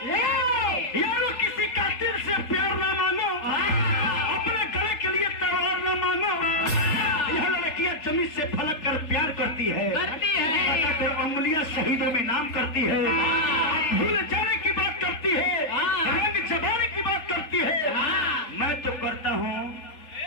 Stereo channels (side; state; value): right; late; 3.8 ms